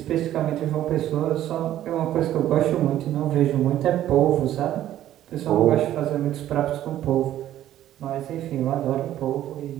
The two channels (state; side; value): quieter; left; 12.6 dB